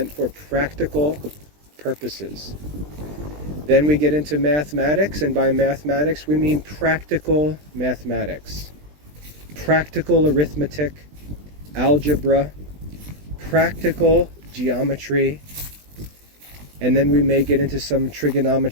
for practical purposes. Then we get into mathematics, and by mathematics we mean practical mathematics. Practical arithmetic, algebra, practical geometry, and then we may get into some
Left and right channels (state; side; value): late; left; 20 ms